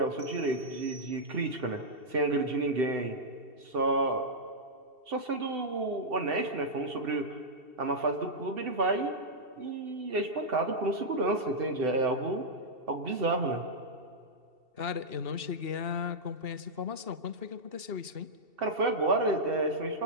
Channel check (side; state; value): left; late; 2.7 ms